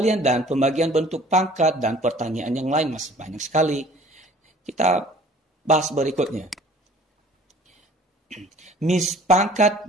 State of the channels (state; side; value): normal; both; correlation 0.50